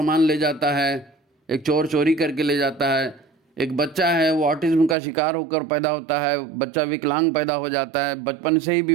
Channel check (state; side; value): drops out; left; at 5.0 s